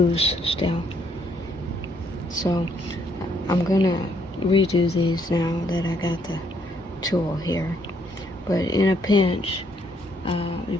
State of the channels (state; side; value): normal; both; correlation 0.70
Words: still, so I'm gonna redo these now that I got the tool here. But in a pinch, You